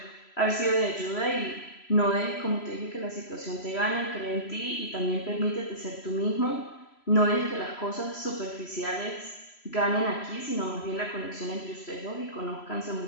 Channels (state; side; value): late; right; 3.0 ms